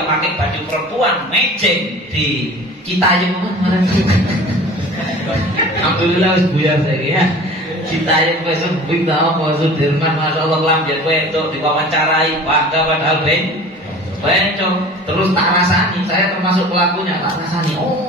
pakai baju perempuan, mejeng di Citayam kemarin. Alhamdulillah wis buyar saiki ya. Citayam besok bing tahu Pak Sudirman, masyaallah kelambian kowe itu diwawancarai, bangga padahal bencong. Terus tak rasani, saya termasuk pelakunya, tak rasani.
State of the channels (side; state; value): both; normal; correlation 0.42